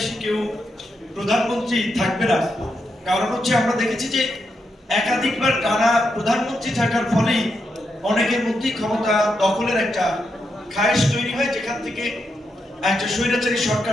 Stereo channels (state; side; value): normal; both; correlation 0.83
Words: কেউ প্রধানমন্ত্রী থাকবে না, কারণ হচ্ছে আমরা দেখেছি যে একাধিকবার টানা প্রধানমন্ত্রী থাকার ফলেই অনেকের মধ্যে ক্ষমতা দখলের একটা খায়েশ তৈরি হয়, যেখান থেকে একটা স্বৈরাচারী